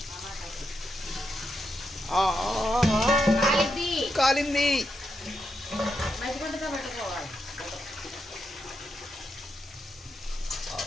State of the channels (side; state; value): both; normal; correlation 0.84